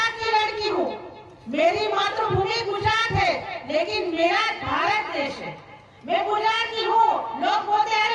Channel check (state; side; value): identical; both; correlation 1.00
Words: की लड़की हूँ, मेरी मातृभूमि गुजरात है, लेकिन मेरा भारत देश है। मैं गुजरात की हूँ। लोग बोलते